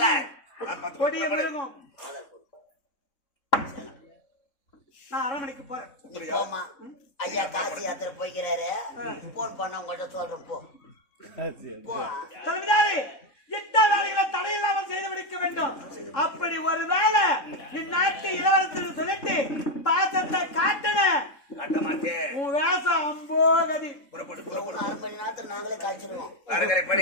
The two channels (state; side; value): late; right; 3.6 ms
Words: கொடிய மிருகம். நான் அரண்மனைக்கு போறேன். ஐயா காசி யாத்திரை போய்கிறாரு. போன் பண்ண உங்கள்கிட்ட சொல்றேன். போ தலைவிதாரி, எந்த வேலைகளை தடையில்லாமல் செய்து முடிக்க வேண்டும். அப்படி ஒரு வேலை இந்நாட்டு இளவரசர் சொல்லிட்டு பாசத்தை காட்டன உன் வேசம் அம்போகதி. நாங்களே காய்ச்சிருவோம்.